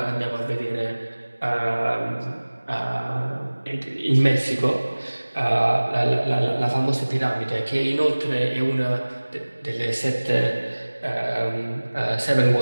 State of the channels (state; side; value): inverted; both; correlation -1.00